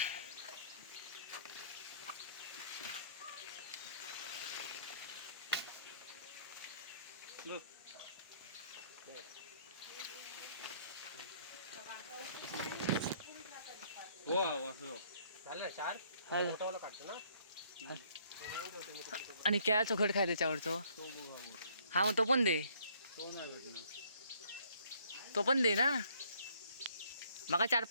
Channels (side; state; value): both; inverted; correlation -0.64